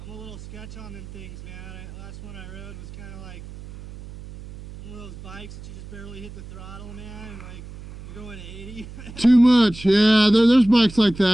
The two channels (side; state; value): right; noise; hum, 14 dB below the sound